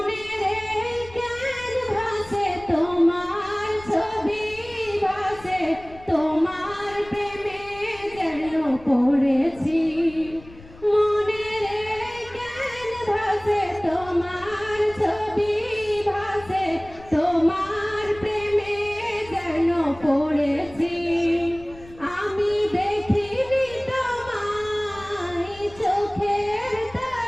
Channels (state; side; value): noise; left; rumble, 20 dB below the sound